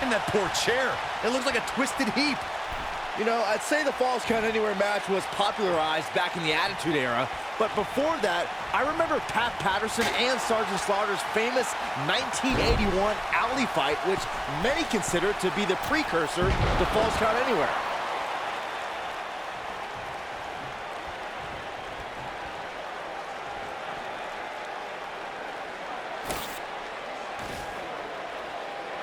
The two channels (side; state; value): both; identical; correlation 1.00